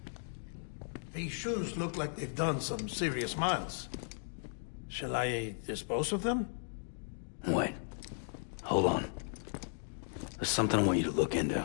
These shoes look like they've done some serious miles. Shall I dispose of them? Wait. Hold on. There's something I want you to look into.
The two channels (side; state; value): right; silent; digital silence